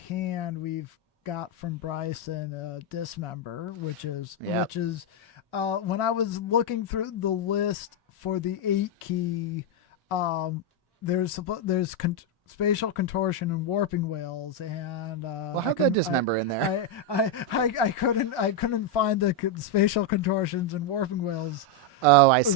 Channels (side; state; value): both; normal; correlation 0.01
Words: we've got from Bryson Dismember, which is when I was looking through the list for the 8 key, there's Spatial Contortion and Warping Whales, and Well, how'd that Dismember in there? I couldn't find the Spatial Contortions and Warping Whales. Oh, I